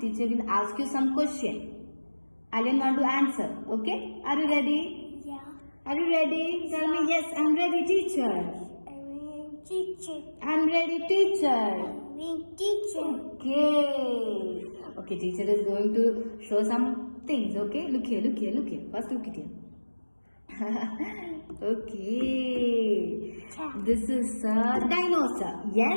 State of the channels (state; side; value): inverted; both; correlation -1.00